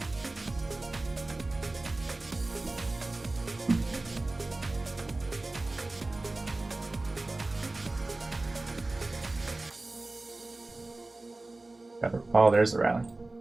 Oh, there's the rally.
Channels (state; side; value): quieter; left; 3.0 dB